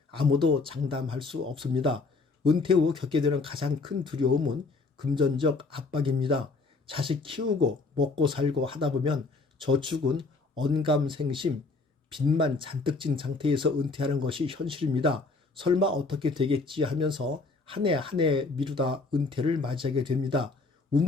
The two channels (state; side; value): quieter; right; 3.8 dB